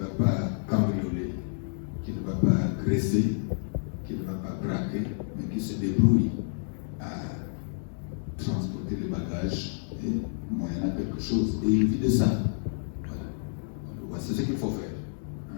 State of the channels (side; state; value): right; silent; digital silence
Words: pas cambrioler, qui ne va pas agresser, qui ne va pas braquer, mais qui se débrouille à transporter les bagages et moyennant quelque chose. Et il vit de ça. Voilà. C'est ce qu'il faut faire.